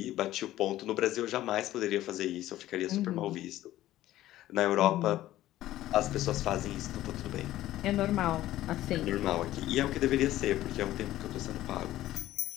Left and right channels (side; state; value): right; quieter; 14.6 dB